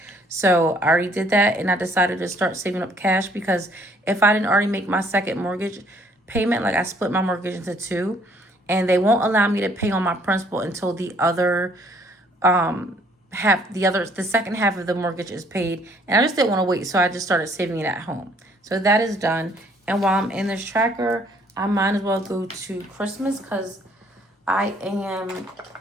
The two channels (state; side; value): normal; both; correlation 0.62